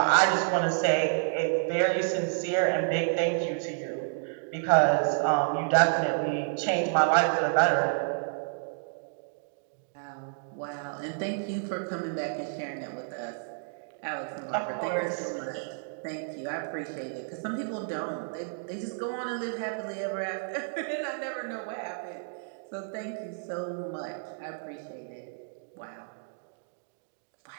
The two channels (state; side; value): silent; left; digital silence